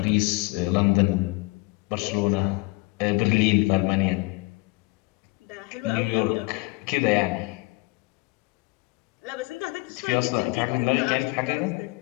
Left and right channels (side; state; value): right; quieter; 24.7 dB